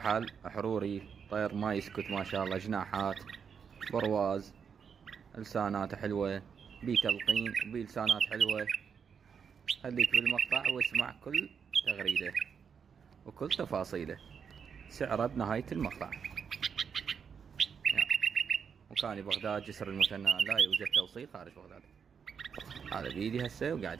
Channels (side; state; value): left; quieter; 6.7 dB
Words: حروري، طير ما يسكت ما شاء الله، جناحات، برواز، لسانات حلوة، بي تلقين وبي لسانات حلوة. خليك بالمقطع واسمع كل تغريدة وكل تفاصيله، سعره بنهاية المقطع. مكاني بغداد، جسر المثنى، لا يوجد توصيل خارج بغداد. هذا بيدي هسه